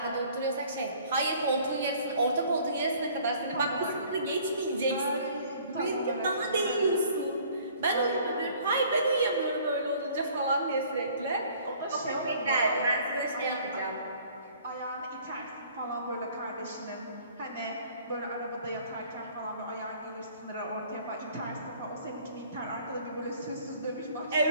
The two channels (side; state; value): both; inverted; correlation -0.55